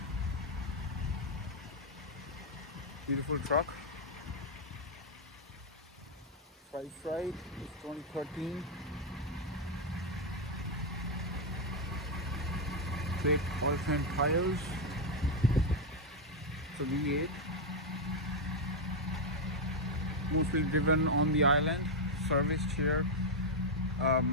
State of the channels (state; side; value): normal; both; correlation 0.00